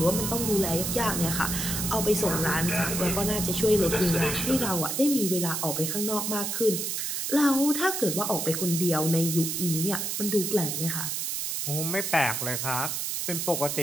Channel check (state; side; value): noise; right; hiss, 2 dB below the sound